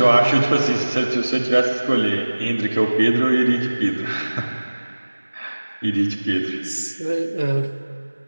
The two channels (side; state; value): both; inverted; correlation -1.00